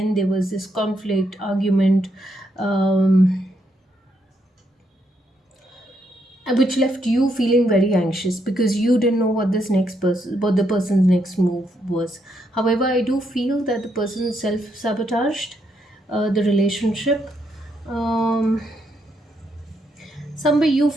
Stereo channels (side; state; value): both; normal; correlation 0.77